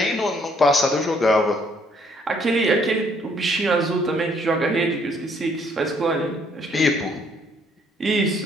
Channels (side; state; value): both; normal; correlation 0.65